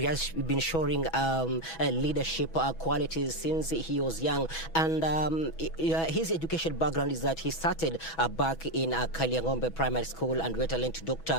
leadership qualities since he was young. And his education background is that he started back in Kaliangombe Primary School and went on to Dr.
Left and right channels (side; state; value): right; late; 6.1 ms